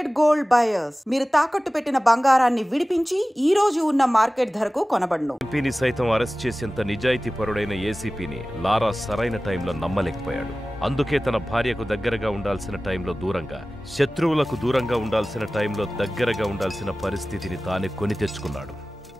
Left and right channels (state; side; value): normal; both; correlation 0.97